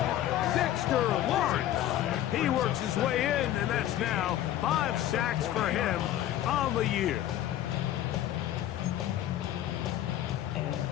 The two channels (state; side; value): quieter; right; 12.5 dB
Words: Dexter Lawrence. He works his way in, and that's now 5 sacks for him on the year.